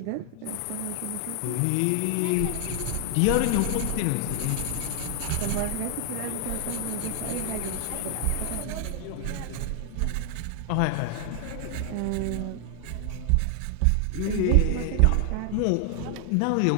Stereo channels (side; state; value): both; different; correlation 0.00